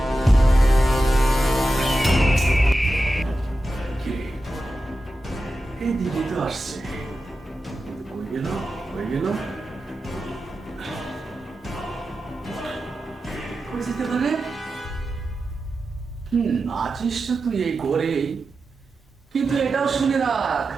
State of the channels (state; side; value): normal; both; correlation 0.92